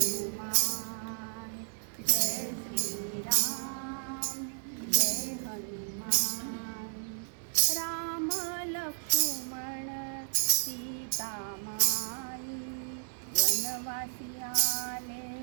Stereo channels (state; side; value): silent; left; digital silence